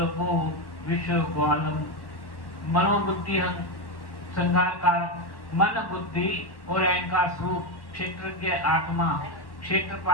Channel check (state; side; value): late; right; 1.1 ms